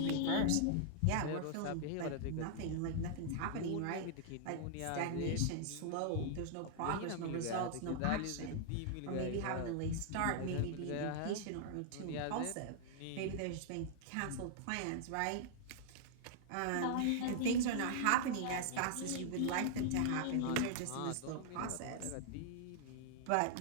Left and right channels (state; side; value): different; both; correlation -0.01